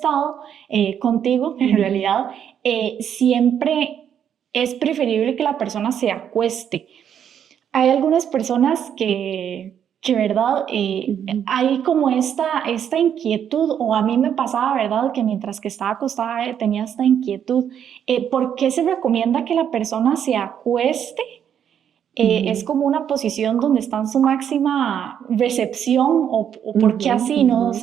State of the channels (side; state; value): left; quieter; 8.9 dB